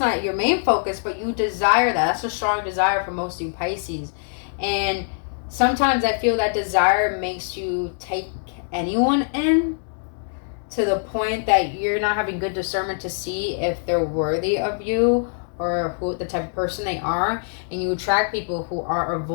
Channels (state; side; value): silent; right; 63 dB below the other